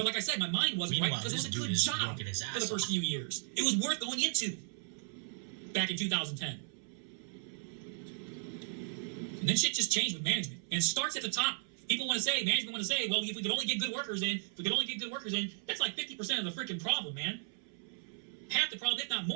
like I said, my mind wasn't right because it was a good job for the first few years. It was worth going into back in 2010. And then shit just changed with management. And it starts at the top. People want to say, management want to say, well, if we could only get good workers in, that's like 50% of the freaking problem, man. Half the problem, if not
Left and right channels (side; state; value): left; silent; 54 dB below the other